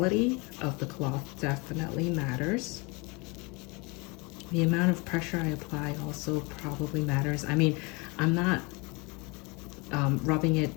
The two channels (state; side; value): quieter; right; 28.3 dB